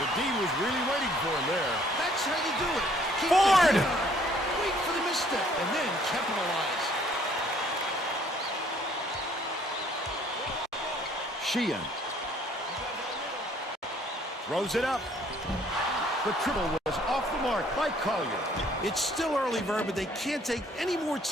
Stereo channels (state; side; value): normal; both; correlation 0.61